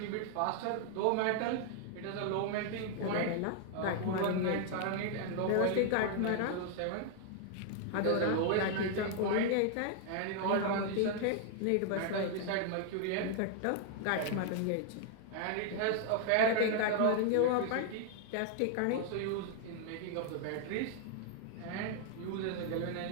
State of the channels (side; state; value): both; different; correlation 0.00